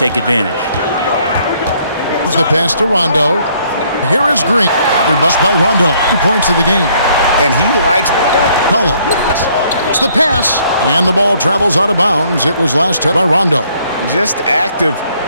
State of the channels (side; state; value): both; inverted; correlation -0.65